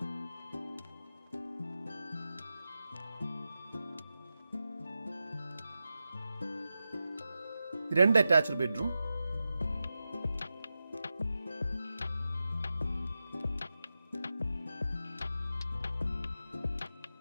രണ്ട് അറ്റാച്ച്ഡ് ബെഡ്റൂം,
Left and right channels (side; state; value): both; inverted; correlation -0.91